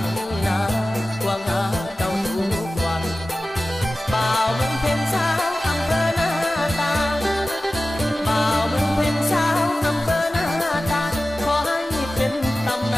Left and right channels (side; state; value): both; normal; correlation 0.95